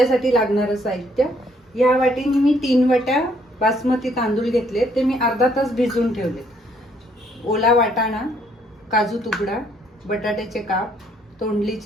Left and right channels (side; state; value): both; normal; correlation 0.67